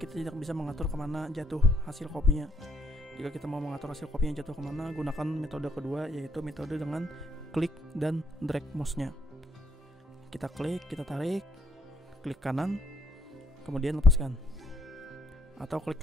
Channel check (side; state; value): both; normal; correlation 0.71